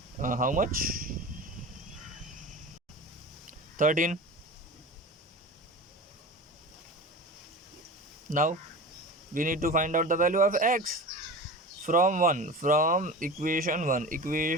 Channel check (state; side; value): normal; both; correlation 0.32